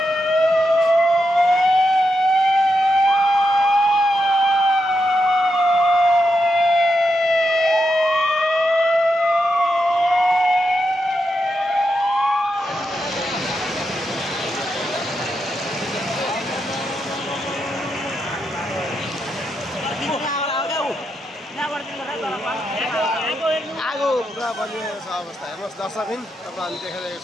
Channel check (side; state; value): both; normal; correlation 0.85